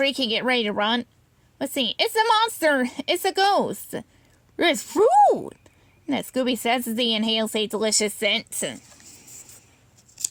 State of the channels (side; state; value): both; identical; correlation 1.00